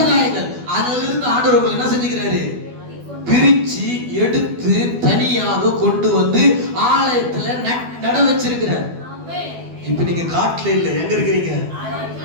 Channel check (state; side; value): late; left; 12 ms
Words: அதிலிருந்து ஆண்டவர் என்ன செஞ்சுக்கிறாரு? பிரிச்சு எடுத்து தனியாக கொண்டு வந்து ஆலயத்துல நட வச்சிருக்கிறார். இப்ப நீங்க காட்டுல இல்ல, எங்க இருக்கிறீங்க?